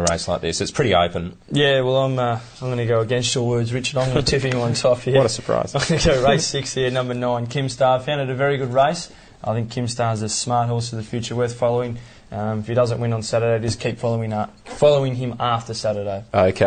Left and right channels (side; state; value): both; identical; correlation 1.00